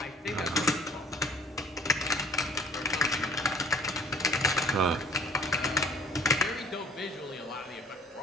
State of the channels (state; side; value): normal; both; correlation 0.53